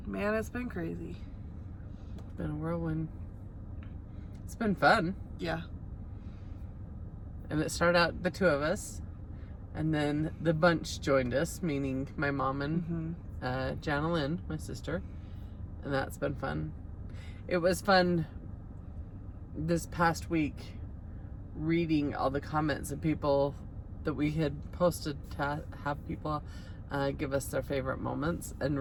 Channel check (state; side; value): identical; both; correlation 1.00